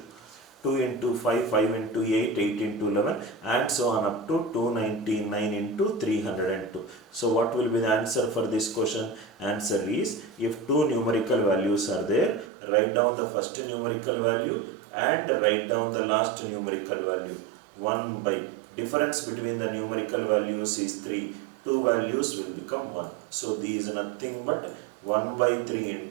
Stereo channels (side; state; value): left; drops out; at 12.5 s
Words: 2 into 5, 5 into 8, 8 into 11 and so on up to 299 into 302. So what will be the answer for this question? Answer is, if two numerical values are there, write down the first numerical value and write down the last numerical value. 1 by difference between the numerical values is 3. Two values will become 1. So these is nothing but 1 by 3